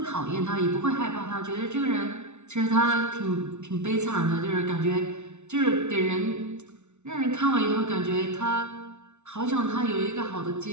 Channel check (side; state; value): left; late; 0.82 ms